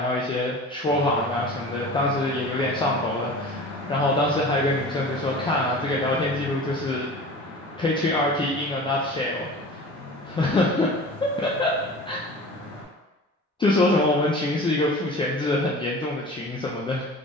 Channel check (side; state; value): both; normal; correlation 0.38